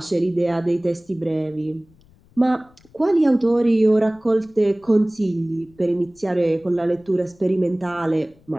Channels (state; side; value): noise; left; rumble, 30 dB below the sound